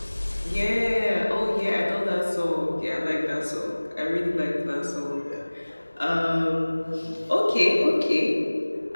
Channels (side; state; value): both; inverted; correlation -1.00